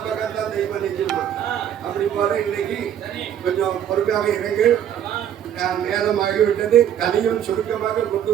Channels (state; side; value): quieter; left; 9.9 dB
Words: பக்கம் தான் தெய்வம் நிற்குமா. அப்படி போல இன்னைக்கு கொஞ்சம் பொறுமையாக இறங்கு. நேரமாகிவிட்டது. கதையும் சுருக்கமாக கொண்டு